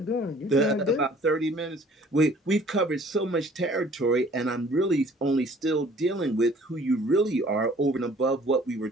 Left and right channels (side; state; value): both; normal; correlation 0.54